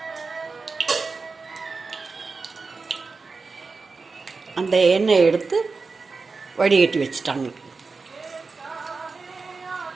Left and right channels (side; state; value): left; quieter; 4.3 dB